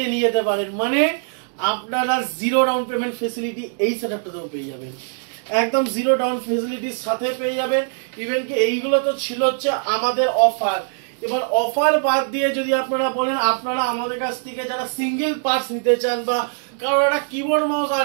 নিয়ে যেতে পারেন। মানে আপনারা জিরো ডাউন পেমেন্ট ফেসিলিটি এই সেটআপটাতেও পেয়ে যাবেন, একদম জিরো ডাউন ফেসিলিটির সাথে পেয়ে যাবেন। ইভেন কি এইগুলো তো ছিল হচ্ছে আমাদের অফার। এবার অফার বাদ দিয়ে যদি আপনারা বলেন আপনারা আমাদের কাছ থেকে যারা সিঙ্গেল পার্টস নিতে চান বা কারোর একটা কিবোর্ড মাউস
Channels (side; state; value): left; silent; 65 dB below the other